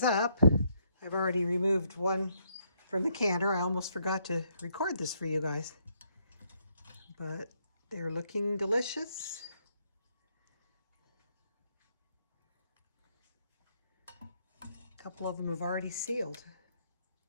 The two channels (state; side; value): inverted; both; correlation -0.72